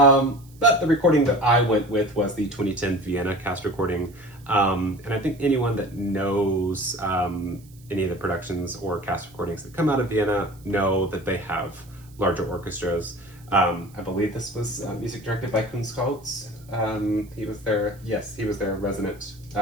the recording that I went with was the 2010 Vienna cast recording. And I think anyone that knows any of the productions or cast recordings that come out of Vienna know that they have larger orchestras. I believe this was music directed by Kunstholz. He was their resident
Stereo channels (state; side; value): noise; right; hiss, 27 dB below the sound